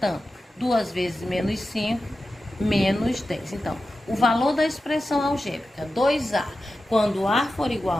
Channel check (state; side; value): normal; both; correlation 0.93